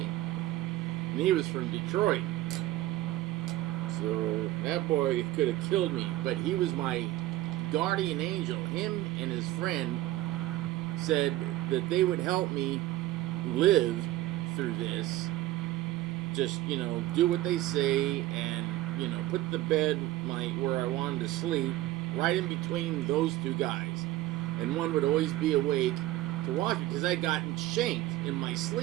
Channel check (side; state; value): left; quieter; 15.9 dB